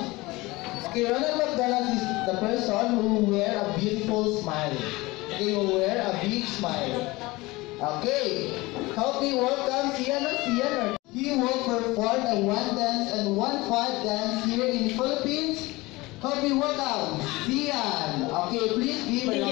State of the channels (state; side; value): quieter; right; 21.6 dB